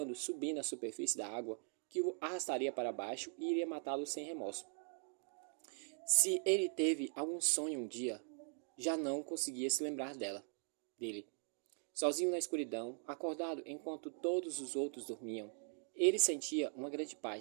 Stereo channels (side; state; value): left; silent; 50 dB below the other